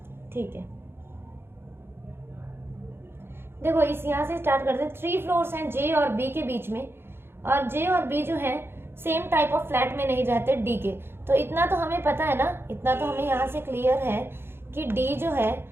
ठीक है, देखो इस यहाँ से स्टार्ट करते हैं। 3 फ्लोर्स हैं जे और बी के बीच में, और जे और बी जो है सेम टाइप ऑफ फ्लैट में नहीं रहते डी के। तो इतना तो हमें पता है ना, इतना तो हमें यहाँ से क्लियर है कि डी जो है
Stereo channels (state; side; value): late; left; 0.11 ms